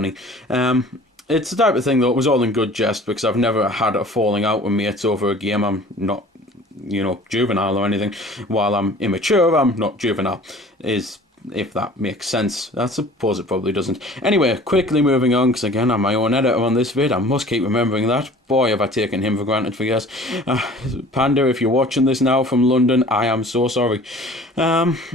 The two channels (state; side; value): normal; both; correlation 0.47